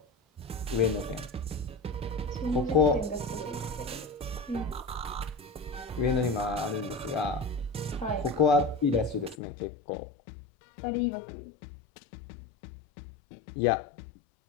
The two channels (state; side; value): drops out; right; at 9.3 s